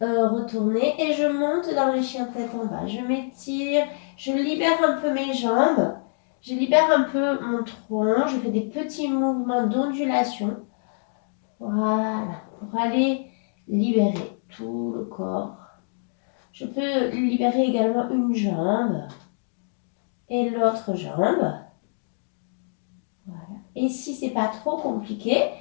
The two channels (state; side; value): silent; right; digital silence